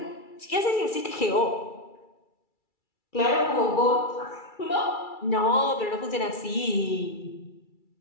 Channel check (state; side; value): late; right; 2.3 ms